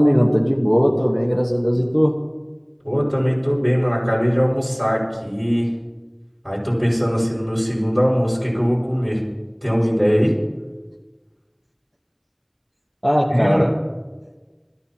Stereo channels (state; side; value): identical; both; correlation 1.00